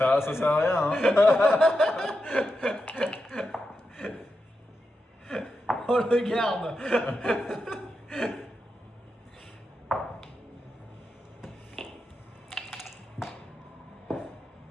sert à rien, hein. On le garde.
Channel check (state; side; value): normal; both; correlation 0.88